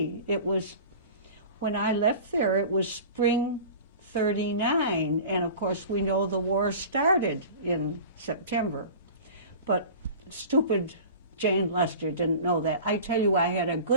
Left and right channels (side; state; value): both; inverted; correlation -0.38